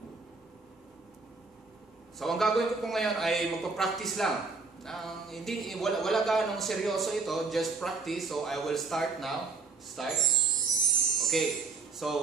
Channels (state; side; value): quieter; left; 4.4 dB